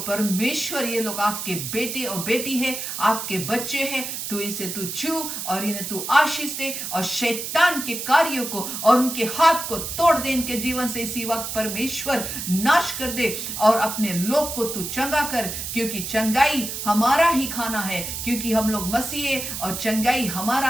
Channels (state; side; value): noise; right; hiss, 5 dB below the sound